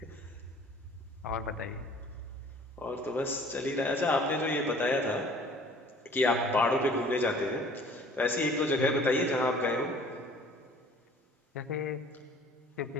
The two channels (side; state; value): both; normal; correlation 0.51